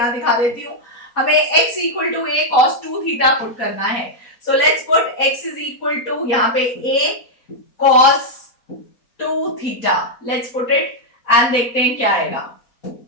दिखा देती हूं। हमें x equal to a cos 2 theta put करना है, so let's put x is equal to यहां पे a cos 2 theta, let's put it and देखते हैं क्या आएगा।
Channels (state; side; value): late; right; 4.0 ms